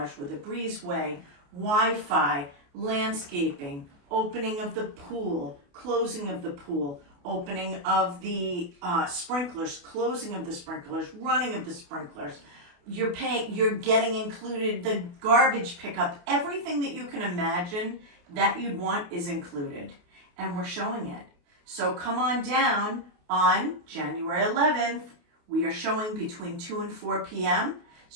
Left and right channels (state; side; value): late; left; 28 ms